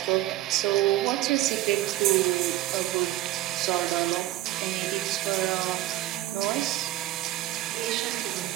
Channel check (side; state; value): left; quieter; 15.5 dB